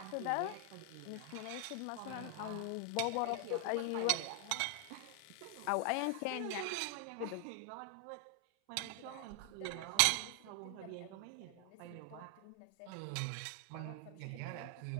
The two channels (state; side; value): different; both; correlation 0.00